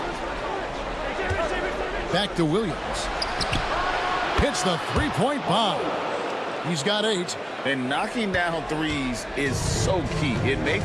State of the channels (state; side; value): identical; both; correlation 1.00